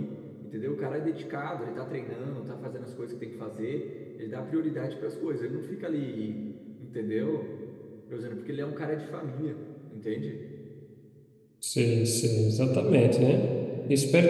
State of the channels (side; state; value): both; identical; correlation 1.00